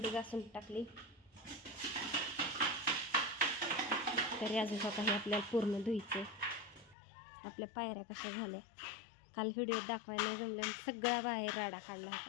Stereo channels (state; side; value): drops out; right; at 7.0 s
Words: घासून टाकली. तरी अजून काही आपल्याला पूर्ण धुईचे. आपल्या पायऱ्या कशा झाल्या काल व्हिडिओ दाखवायला जमल्या. सगळा बाहेर राडा काढला